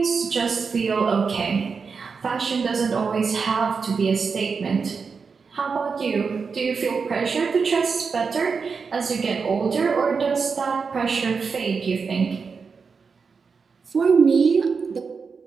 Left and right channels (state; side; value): quieter; left; 5.3 dB